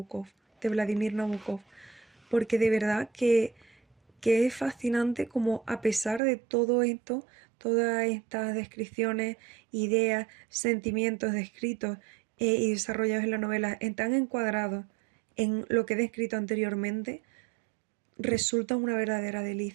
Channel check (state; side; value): drops out; left; at 6.2 s